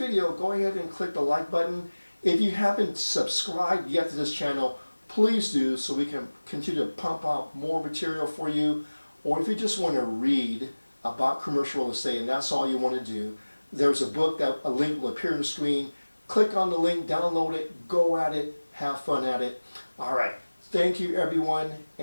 go ahead and click the like button. If you haven't subscribed yet to this channel, please do, so we can continue to pump out more material for you. Or if you just want to read about commercial real estate and that's all you want to do, there's a book that a link will appear on the screen. Click on the link, download it, go at it, have fun at it. All right, thank you everyone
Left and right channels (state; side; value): inverted; both; correlation -1.00